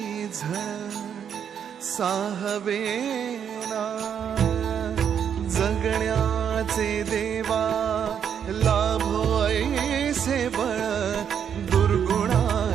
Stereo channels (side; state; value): left; quieter; 8.2 dB